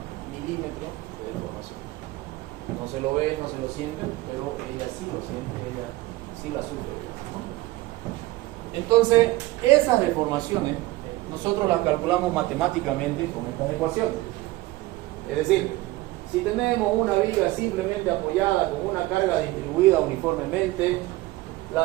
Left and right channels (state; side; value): quieter; left; 18.8 dB